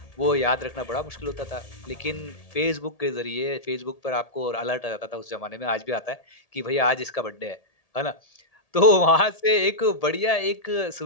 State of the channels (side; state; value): right; late; 1.8 ms